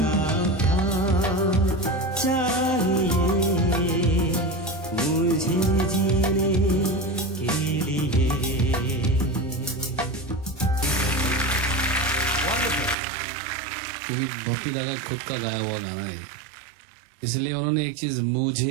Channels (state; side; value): drops out; left; at 13.0 s